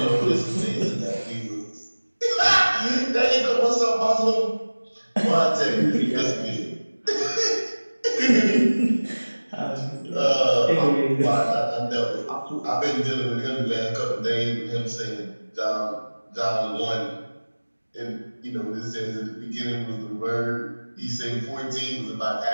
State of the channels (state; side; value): inverted; both; correlation -1.00